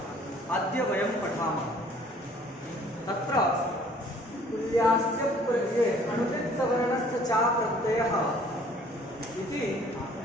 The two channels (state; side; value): normal; both; correlation 0.56